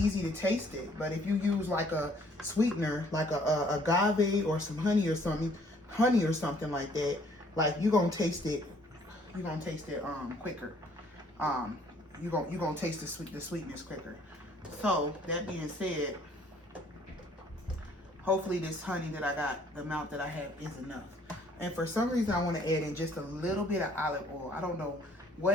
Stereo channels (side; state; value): both; normal; correlation 0.60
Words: to taste it. But if you use like a sweetener, like a agave or some honey or something like that, like you're gonna taste it. You're gonna taste it quicker. You're gonna taste the sweetness quicker. So that being said, hopefully this honey that I got, the amount that I have is enough. And for some reason I want to add in just a little bit of olive oil. I don't know